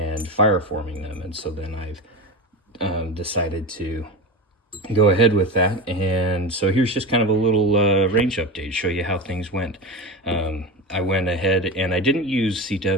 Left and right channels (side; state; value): both; normal; correlation 0.24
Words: fireforming them. And so then I've decided to go ahead with that. And so here's just kind of a little range update, show you how things went. I went ahead and I didn't use